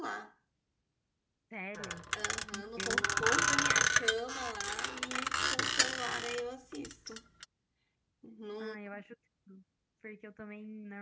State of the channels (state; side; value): identical; both; correlation 1.00